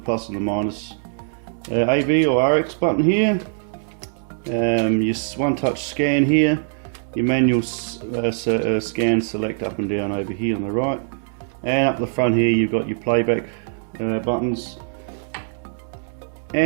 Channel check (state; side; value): silent; left; digital silence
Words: and the minus. AV or RX button here. Your one-touch scan here. Your manual scan select up and down over here on the right. And up the front here you've got your playback buttons.